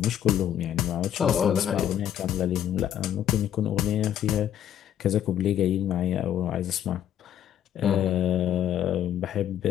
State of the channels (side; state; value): right; quieter; 10.5 dB